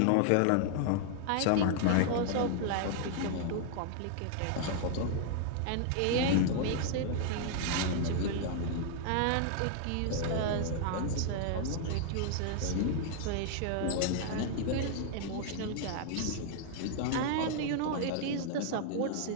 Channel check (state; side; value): different; both; correlation 0.00